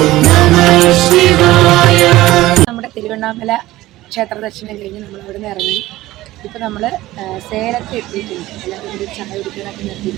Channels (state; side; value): quieter; left; 16.9 dB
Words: നമഃ ശിവായ. നമ്മുടെ തിരുവണ്ണാമല ക്ഷേത്ര ദർശനം കഴിഞ്ഞ് നമ്മൾ അവിടെ നിന്ന് ഇറങ്ങി. ഇപ്പോൾ നമ്മൾ സേലത്ത് എത്തിയിട്ടുണ്ട്. എല്ലാവരും കൂടി ചായ കുടിക്കാനൊക്കെ